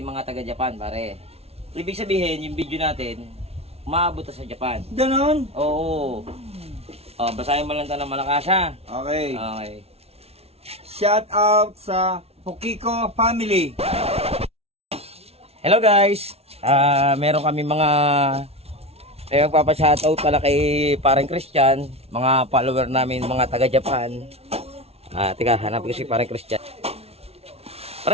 taga-Japan, pare. Ibig sabihin, yung video natin, umaabot na sa Japan. Ganon? Oo. Basahin mo lang ito ng malakas, ha? Okay. Okay. Shout out sa Pokiko family. Hello guys! Meron kami mga magpapashoutout pala kay parang Christian, mga follower namin, mga taga-Japan. Teka, hanapin ko si parang Christian.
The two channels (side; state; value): left; late; 0.30 ms